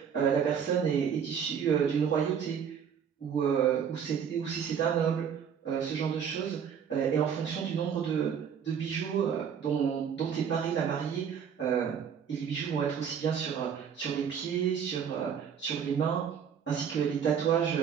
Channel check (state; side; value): quieter; left; 7.6 dB